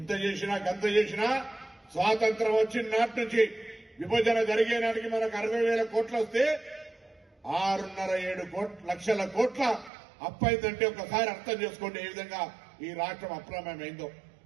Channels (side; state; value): left; drops out; at 9.9 s